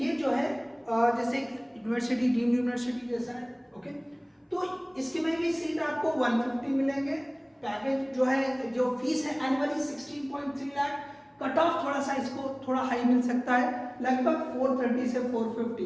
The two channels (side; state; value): both; identical; correlation 1.00